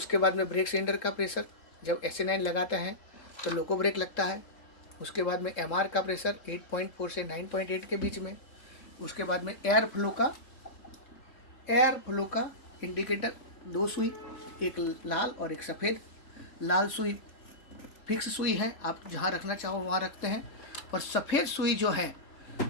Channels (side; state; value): right; late; 3.7 ms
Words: बाद में ब्रेक सिलेंडर का प्रेशर, जब SA9 लगाते हैं तो लोको ब्रेक लगता है। उसके बाद में MR का प्रेशर 8.4 से 9.8 के बीच में। उसके बाद में एयर फ्लो का इंडिकेटर, 2 सुई, एक लाल और एक सफ़ेद। लाल सुई फिक्स सुई है, आप जहाँ रखना चाहो वहाँ रखते हैं। और सफ़ेद सुई जो है